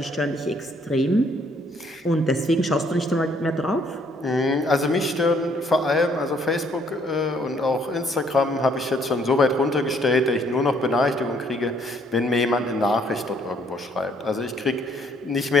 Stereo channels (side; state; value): both; normal; correlation 0.66